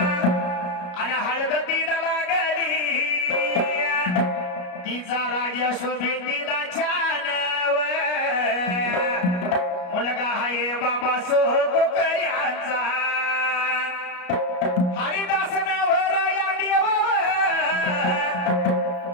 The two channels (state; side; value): late; right; 34 ms